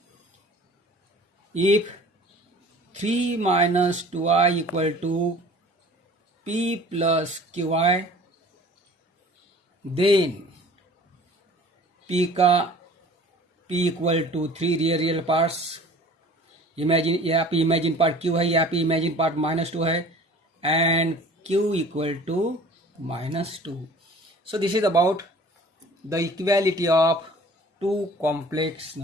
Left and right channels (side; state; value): both; normal; correlation 0.47